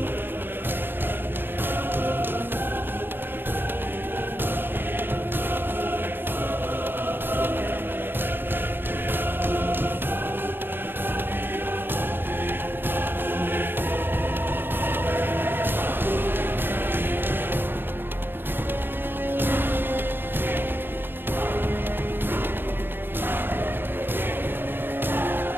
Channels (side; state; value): left; late; 0.098 ms